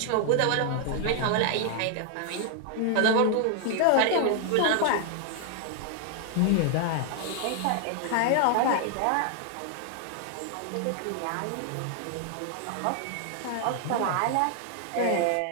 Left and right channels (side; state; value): both; different; correlation 0.00